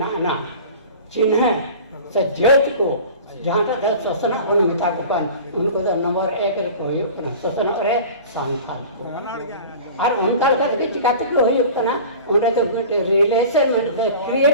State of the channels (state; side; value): inverted; both; correlation -0.40